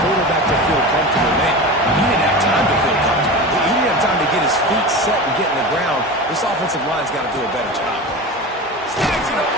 to feel comfortable, man. He didn't have time to feel comfortable. He didn't have time to get his feet set and get in the ground. This offensive line's got to do a better job. Snags it up.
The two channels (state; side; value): normal; both; correlation 0.29